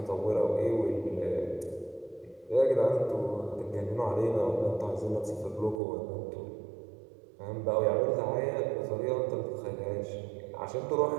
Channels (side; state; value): left; drops out; at 5.8 s